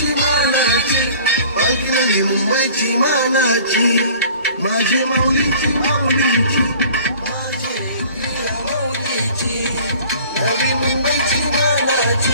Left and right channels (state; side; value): inverted; both; correlation -0.47